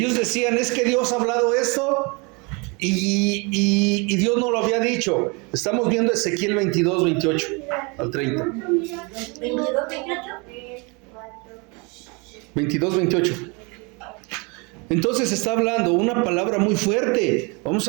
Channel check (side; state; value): left; quieter; 30.1 dB